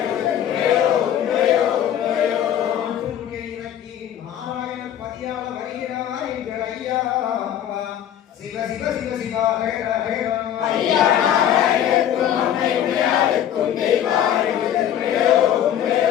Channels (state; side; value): quieter; right; 10.5 dB